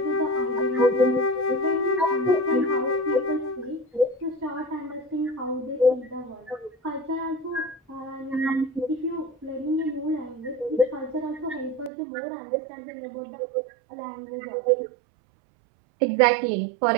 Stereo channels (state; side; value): drops out; left; at 11.9 s